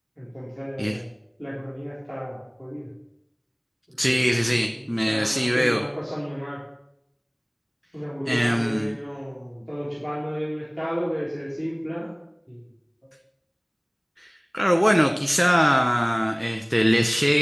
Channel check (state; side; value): identical; both; correlation 1.00